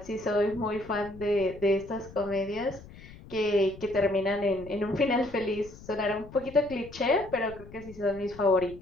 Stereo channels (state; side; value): noise; left; rumble, 18 dB below the sound